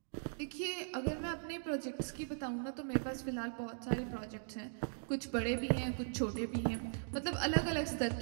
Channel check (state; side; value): silent; left; digital silence